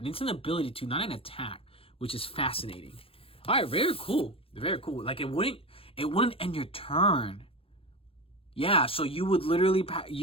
it's an ability too, not an attack, which is fascinating. All right, very cool. Very cool. Like it wouldn't end your turn. Yeah, so you would literally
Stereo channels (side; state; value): right; late; 0.27 ms